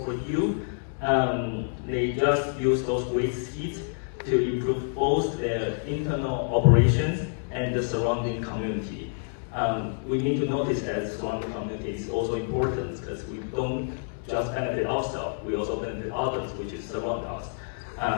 for you. They just use those waste heat to improve both their internal operations and the surrounding community. We need to notice that the surrounding community is also important because we don't just benefit ourselves, we also benefit others, which is surround us.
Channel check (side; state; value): right; silent; 56 dB below the other